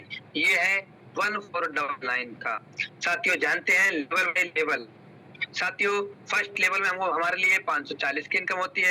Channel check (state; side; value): identical; both; correlation 1.00